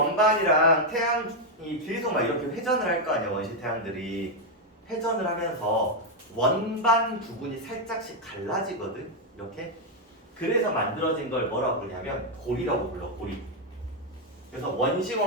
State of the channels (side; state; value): both; normal; correlation 0.02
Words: 태양이 계속 막 이렇게 회전을 할 거 아니야. 원시 태양들이 회전을 하면서 원반 부분이 살짝씩 갈라지거든. 이렇게. 그래서 만들어진 걸 뭐라고 부르냐면 고리라고 불러. 고리. 그래서 원시